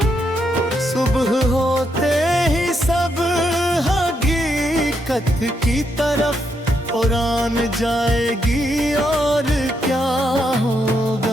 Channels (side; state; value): both; normal; correlation 0.79